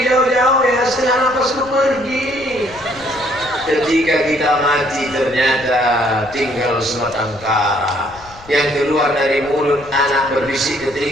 jauh-jauh ya, setengah napasku pergi. Ketika kita mati ternyata tinggal sebatang kara. Yang keluar dari mulut anak berbisik ke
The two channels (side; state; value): left; noise; rumble, 22 dB below the sound